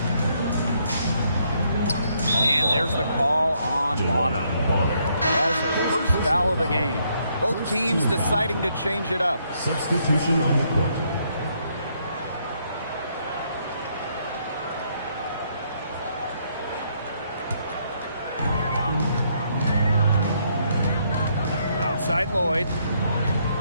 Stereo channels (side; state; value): both; inverted; correlation -0.72